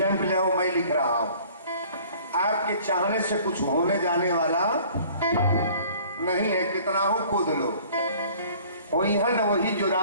ले आओ, मैं लिख रहा हूं, आपके चाहने से कुछ होने जाने वाला नहीं है, कितना हो कूद लो। वही जो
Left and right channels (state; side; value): inverted; both; correlation -0.51